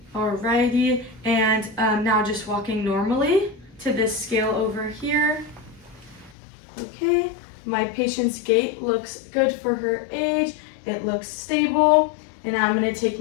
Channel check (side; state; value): right; drops out; at 6.4 s